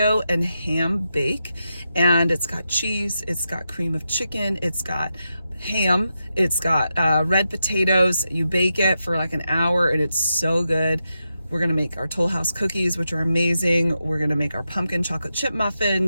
and ham bake, and it's got cheese, it's got cream of chicken, it's got ham, it's got red potatoes. You bake it for like an hour and it's so good. We're gonna make our Toll House cookies, which are amazing. We're gonna make our pumpkin chocolate chip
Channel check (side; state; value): both; inverted; correlation -0.87